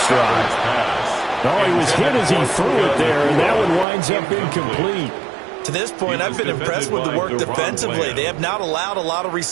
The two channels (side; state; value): left; drops out; at 3.9 s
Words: drive. Oh, he was hit as he threw it there, and that one winds up incomplete. To this point, I've been impressed with the work defensively. They have not allowed a lot of